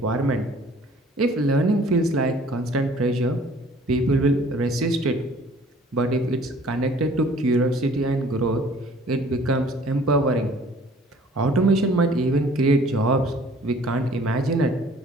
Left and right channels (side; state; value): both; normal; correlation 0.53